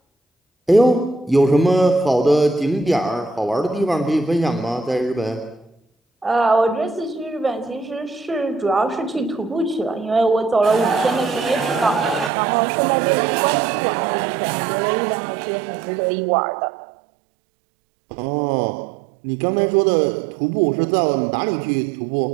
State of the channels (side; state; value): left; drops out; at 12.3 s